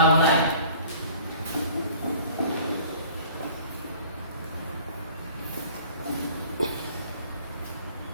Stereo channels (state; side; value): inverted; both; correlation -0.49